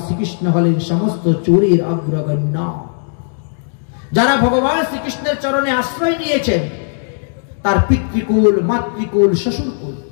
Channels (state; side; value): silent; right; digital silence